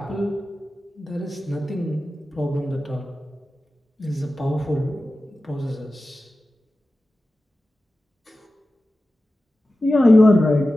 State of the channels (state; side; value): normal; both; correlation 0.94